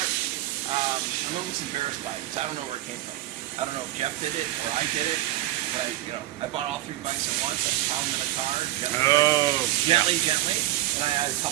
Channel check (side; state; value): left; quieter; 15.5 dB